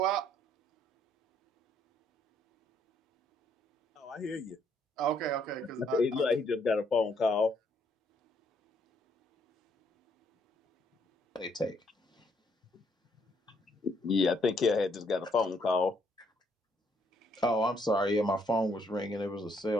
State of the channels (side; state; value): both; normal; correlation 0.70